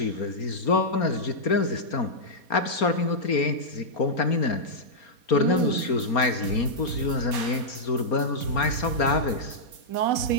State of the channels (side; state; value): right; late; 4.3 ms